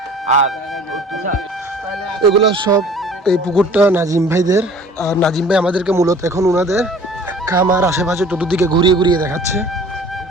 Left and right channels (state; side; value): normal; both; correlation 0.49